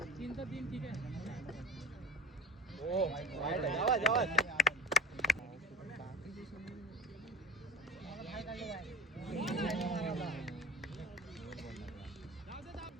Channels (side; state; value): both; normal; correlation 0.33